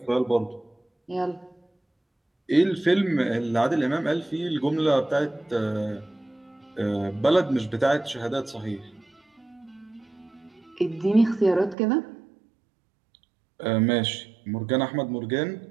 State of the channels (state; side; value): drops out; left; at 11.8 s